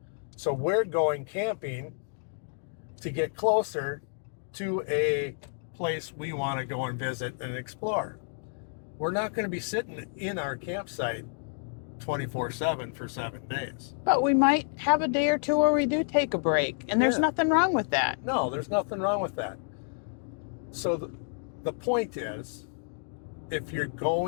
So we're going camping to get closer to a place we want to go and visit and explore. We're not going to be sitting in our campsite 24/7 for 7 days. But we might have a day or two where we do take a break, and there's nothing wrong with that. No, there's nothing wrong with that. So the point is, if you're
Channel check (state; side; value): silent; right; digital silence